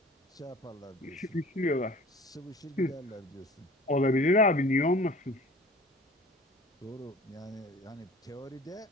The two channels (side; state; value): both; normal; correlation 0.45